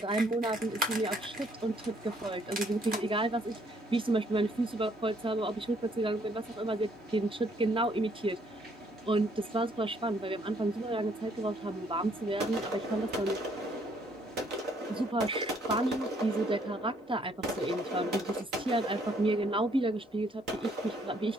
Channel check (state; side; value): normal; both; correlation 0.66